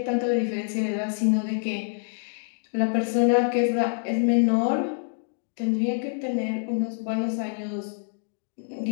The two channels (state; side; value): silent; right; digital silence